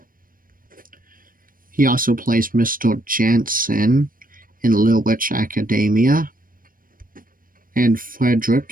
He also plays Mr. Jansen in Little Witch Academia, and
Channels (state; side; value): late; left; 0.41 ms